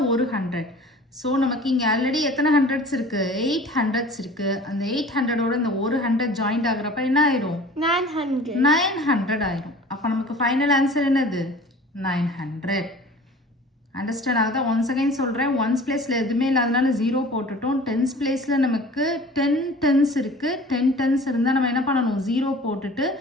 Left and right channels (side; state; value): both; normal; correlation 0.44